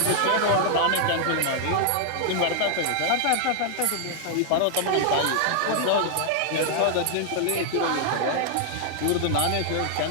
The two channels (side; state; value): both; different; correlation 0.00